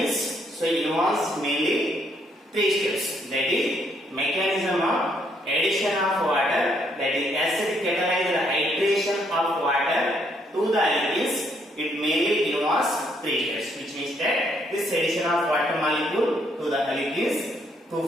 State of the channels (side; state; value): both; normal; correlation 0.71